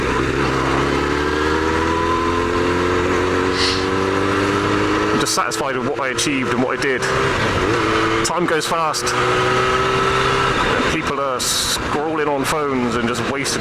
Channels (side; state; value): both; identical; correlation 1.00